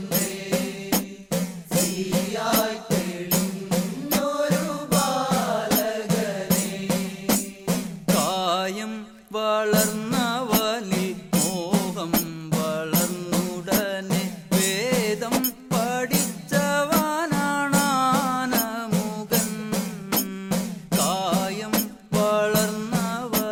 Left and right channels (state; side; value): identical; both; correlation 1.00